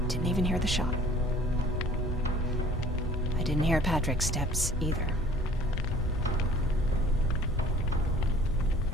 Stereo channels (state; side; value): normal; both; correlation 0.52